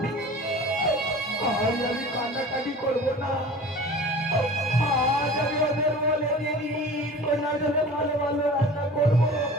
আজ আমি কান্নাকাটি করবো না আজ আমি ওদের বলে দিই কন্যার জন্য ভালো ভালো রান্না করবো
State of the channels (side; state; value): both; normal; correlation 0.40